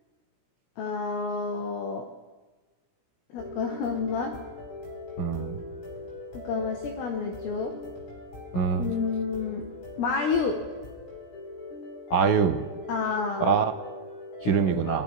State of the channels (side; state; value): right; late; 17 ms